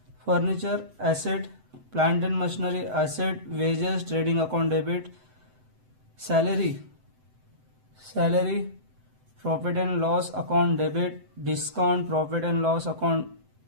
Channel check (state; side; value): late; left; 7.9 ms